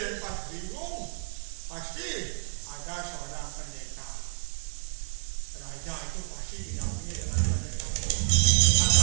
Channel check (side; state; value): left; silent; digital silence